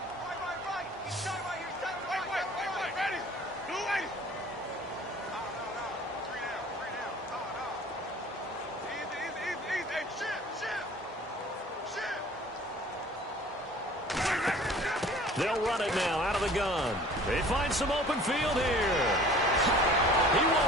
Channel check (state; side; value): normal; both; correlation 0.48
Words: They'll run it now out of the gun. They find some open field here. He